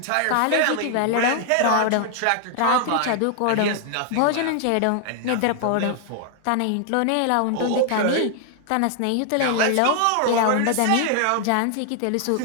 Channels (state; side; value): different; both; correlation 0.00